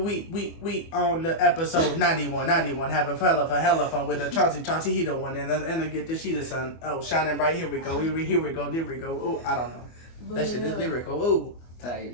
on the episode 91 having hella fun with the Chawncy he the one and the get the she the sun. Oh, shining bright. Here we go. Here we go. Oh, I don't know. But, that shit is lyrical. Ooh.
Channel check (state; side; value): late; right; 24 ms